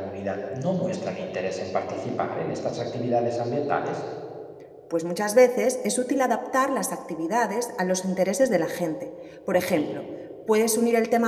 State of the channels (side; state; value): both; identical; correlation 1.00